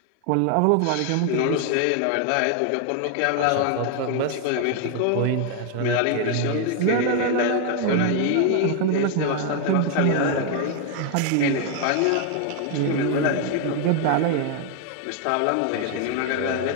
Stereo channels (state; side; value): different; both; correlation 0.00